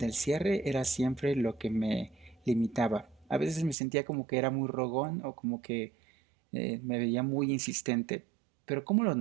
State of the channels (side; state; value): left; drops out; at 3.8 s